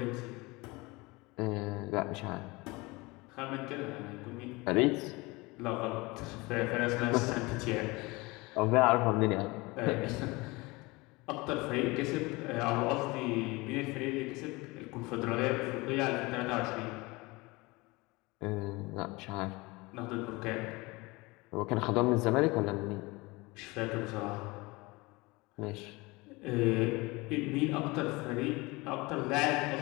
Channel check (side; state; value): right; quieter; 23.7 dB